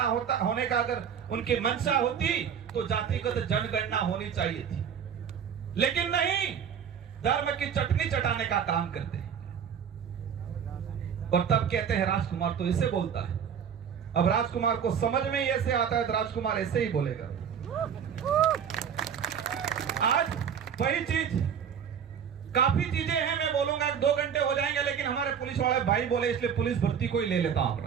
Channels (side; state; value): left; quieter; 7.8 dB